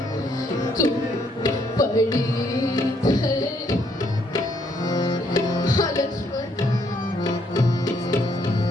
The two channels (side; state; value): both; normal; correlation 0.70